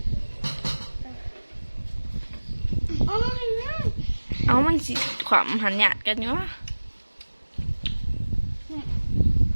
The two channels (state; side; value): inverted; both; correlation -1.00